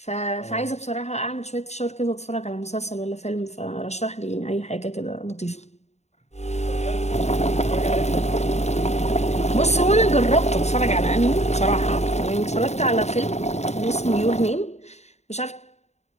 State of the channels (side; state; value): right; late; 0.32 ms